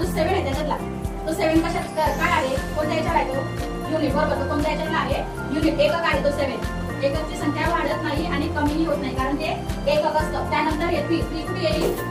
7 आहे त्याच्यातला तो 7 कशात काय आहे, कोणत्या याच्यावर आहे तो युनिट, बरोबर. तो कोणत्या याच्यातला आहे युनिट, एकक आहे तो 7. एककची संख्या वाढत नाही आणि कमीही होत नाही कारण ते एकक असतं. त्यानंतर हे 3 कुठे येईल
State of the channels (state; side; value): identical; both; correlation 1.00